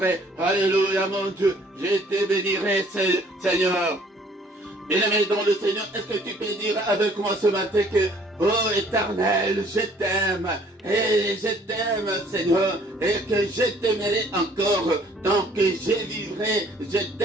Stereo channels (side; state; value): both; normal; correlation 0.58